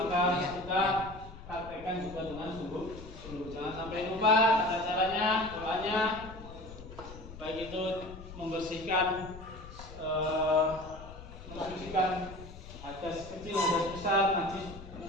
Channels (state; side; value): noise; left; rumble, 14 dB below the sound